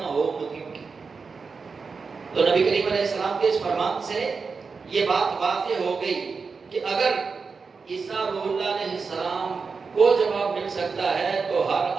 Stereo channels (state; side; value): quieter; left; 4.9 dB